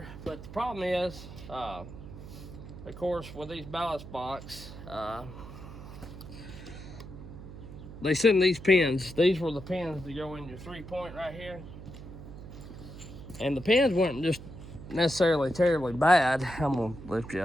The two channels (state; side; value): noise; right; hum, 13 dB below the sound